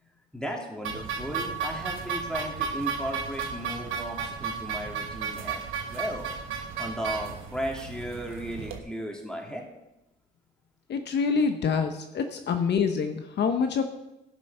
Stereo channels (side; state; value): both; normal; correlation 0.34